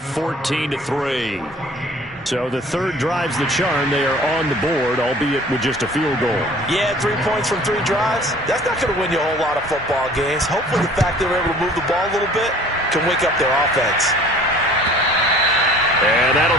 So the third drive's the charm. They are on the board, albeit with just a field goal. Yeah, 3 points from 3 drives. That's not going to win you a whole lot of football games. Hopefully the fact they were able to move the ball a little bit can wake up their offense. And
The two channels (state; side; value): normal; both; correlation 0.50